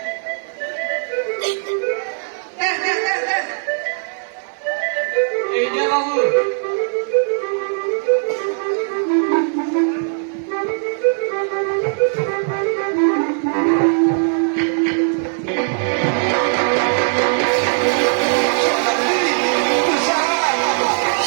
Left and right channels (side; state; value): left; silent; digital silence